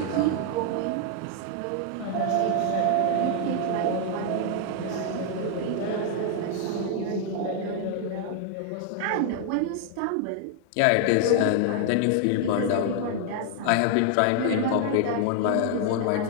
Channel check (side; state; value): both; different; correlation 0.00